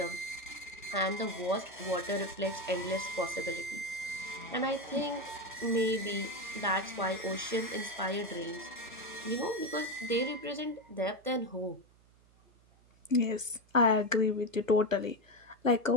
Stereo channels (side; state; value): right; noise; hum, 29 dB below the sound